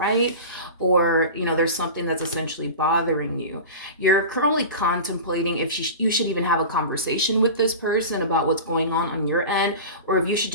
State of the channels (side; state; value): both; inverted; correlation -0.31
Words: or there's something that's essentially bothering you, you're currently contemplating if you should even have a conversation with this person about what's going on your end, or if you should